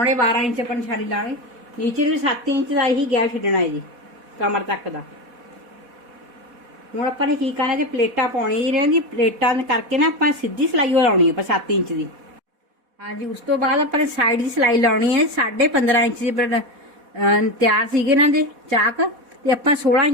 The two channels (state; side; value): late; left; 4.1 ms